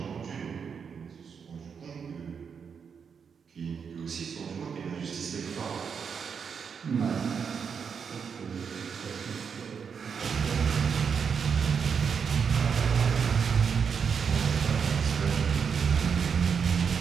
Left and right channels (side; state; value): left; quieter; 6.5 dB